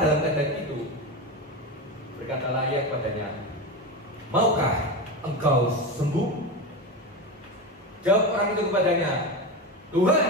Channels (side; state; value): both; normal; correlation 0.20